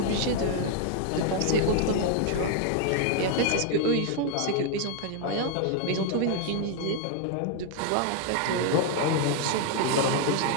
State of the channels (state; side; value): different; both; correlation 0.00